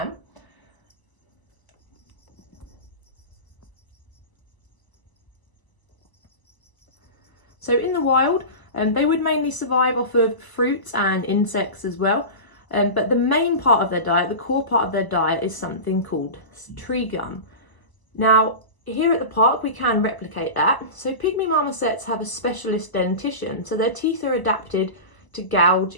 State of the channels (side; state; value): right; late; 1.0 ms